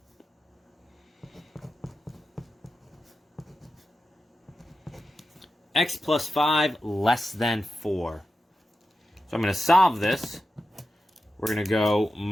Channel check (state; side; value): normal; both; correlation 0.91